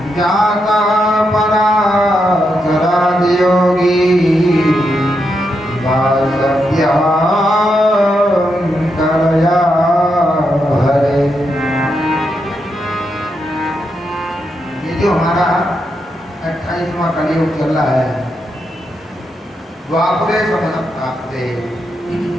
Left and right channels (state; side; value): normal; both; correlation 0.83